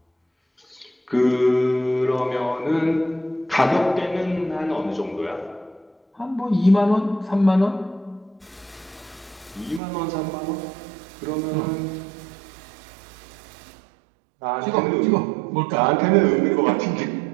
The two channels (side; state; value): left; drops out; at 9.8 s